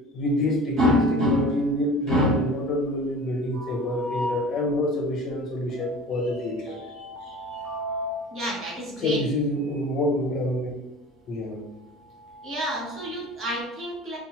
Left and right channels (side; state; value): both; normal; correlation 0.40